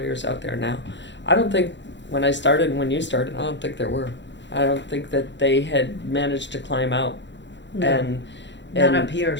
out there now. I don't think when I started and when you started, I don't think there were. I don't think that they had managed to climb out. No. And Not up here,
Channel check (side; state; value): right; late; 0.52 ms